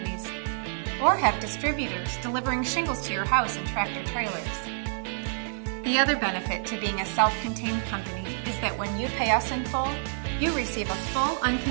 or have distributors delivering shingles to your house in tractor trailers. The other benefit to being a self-contained company is that when you pay us in full, you receive a full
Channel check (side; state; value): left; silent; digital silence